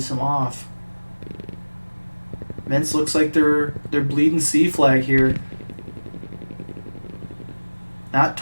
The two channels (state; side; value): inverted; both; correlation -1.00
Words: him off. MINC looks like they're bleeding C flag here. Not